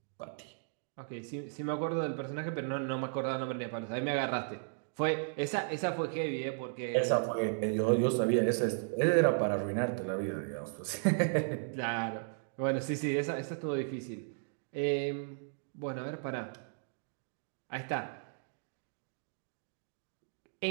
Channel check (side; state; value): left; silent; digital silence